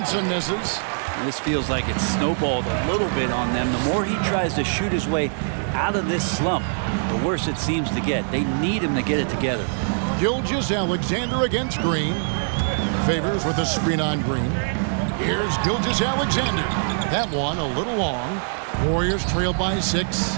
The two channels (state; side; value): silent; left; 63 dB below the other